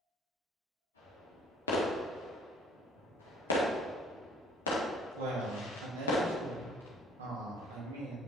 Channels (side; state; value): both; normal; correlation 0.57